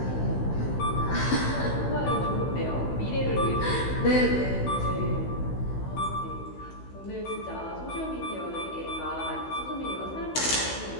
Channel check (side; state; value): right; late; 16 ms